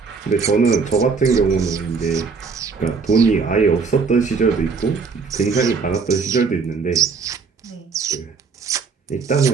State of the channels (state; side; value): quieter; left; 5.0 dB